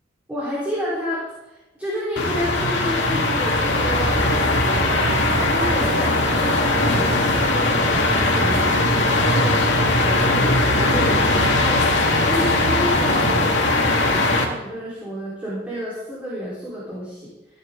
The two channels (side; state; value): both; normal; correlation 0.17